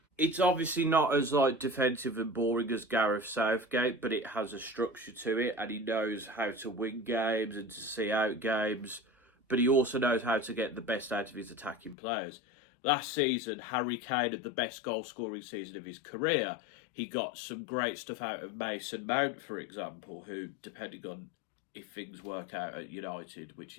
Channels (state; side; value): drops out; right; at 12.0 s